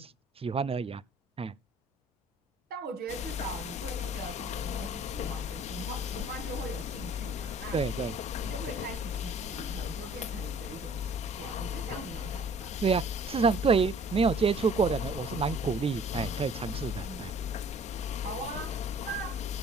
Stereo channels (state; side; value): normal; both; correlation 0.53